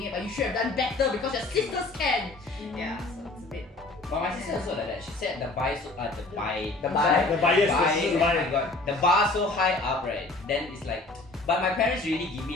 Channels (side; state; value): right; quieter; 3.2 dB